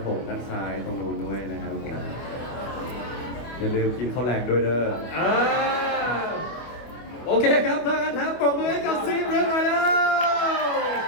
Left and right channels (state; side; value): late; right; 25 ms